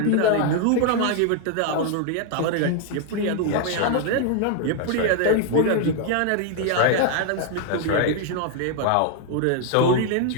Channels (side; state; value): both; different; correlation 0.00